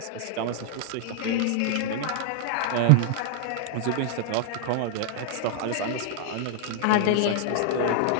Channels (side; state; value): both; different; correlation -0.01